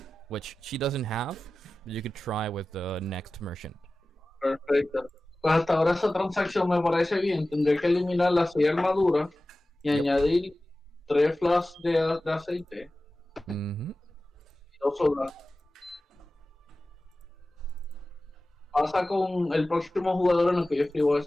which she doesn't have. But you could try with the next merchant. Perfecto. Pues hasta ahora esa transacción me parece bien. Tendré que eliminar las 6 armaduras y añadir 3 flasks de aceite. Y 2 sodas. Pasa con el próximo jugador en el que yo escribo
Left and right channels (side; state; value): both; normal; correlation 0.96